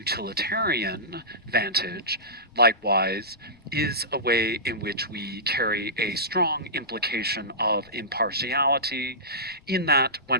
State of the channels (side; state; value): left; noise; rumble, 28 dB below the sound